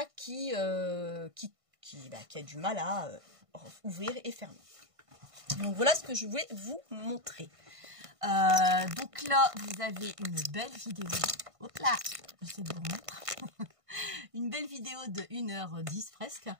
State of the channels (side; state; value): left; late; 1.5 ms